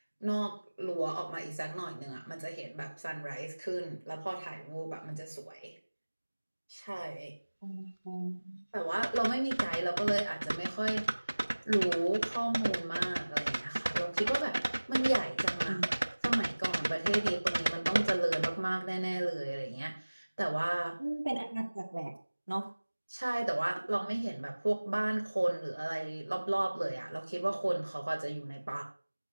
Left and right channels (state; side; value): inverted; both; correlation -1.00